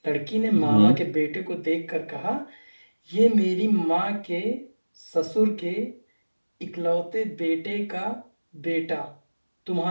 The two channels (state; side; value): inverted; both; correlation -1.00